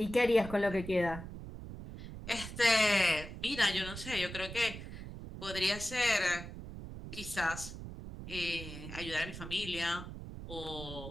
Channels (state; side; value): noise; right; rumble, 10 dB below the sound